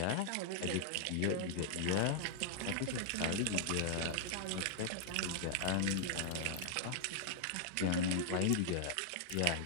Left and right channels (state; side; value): different; both; correlation -0.01